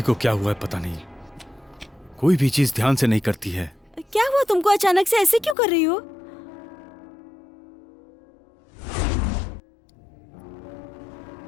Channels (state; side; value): drops out; right; at 5.6 s